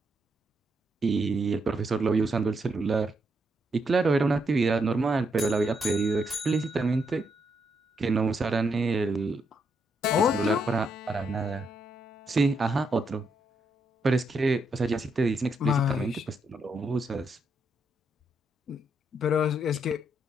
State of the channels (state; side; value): normal; both; correlation 0.78